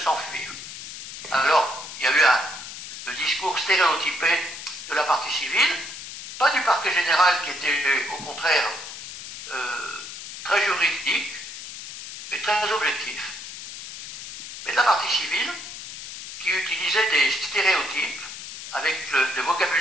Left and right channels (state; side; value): noise; left; hiss, 11 dB below the sound